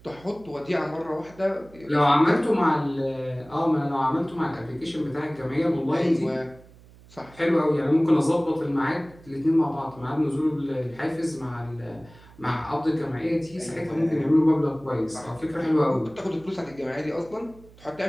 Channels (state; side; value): noise; right; hum, 24 dB below the sound